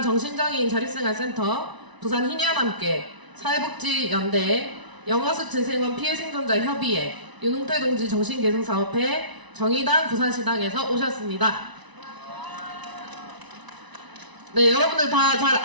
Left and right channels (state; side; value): late; left; 1.0 ms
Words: 자립생활센터, 부산희년함께, 사회복지연대, 영아수 재생원 피해생존자 협의회, 윤웅태 동지 정신개선사업회, 정의당 부산시당에서 오셨습니다. 네, 여러분들 다 잘